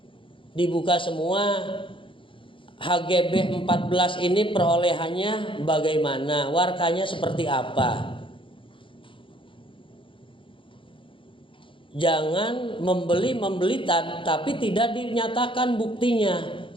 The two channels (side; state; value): right; late; 0.25 ms